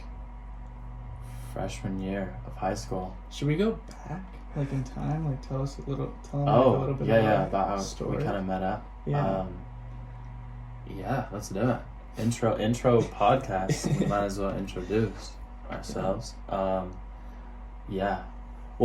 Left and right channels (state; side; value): identical; both; correlation 1.00